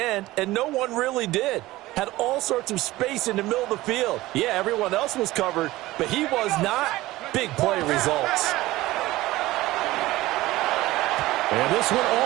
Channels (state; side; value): quieter; left; 17.8 dB